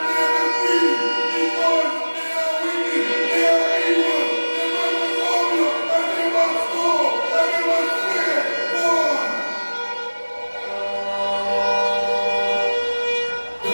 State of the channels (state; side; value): inverted; both; correlation -1.00